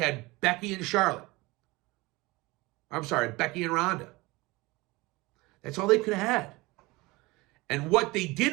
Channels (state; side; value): quieter; left; 22.4 dB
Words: Becky and Charlotte. I'm sorry, Becky and Ronda. That's all they could have had. And what they